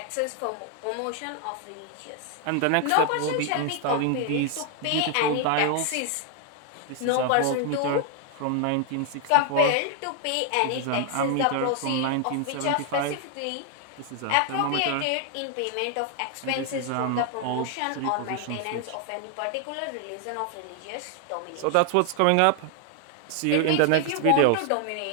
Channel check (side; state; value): both; different; correlation 0.00